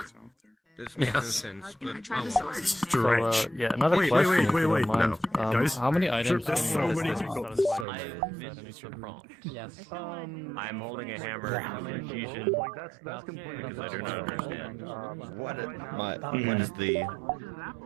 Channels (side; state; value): left; drops out; at 7.9 s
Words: This makes no sense. But So, yeah, another Wait, question. wait, if wait, you don't wait, mind. no. Guys, how many items? there's so many people. Yes. I'm holding a hammer. Confusion. That's completely. Because I do not understand.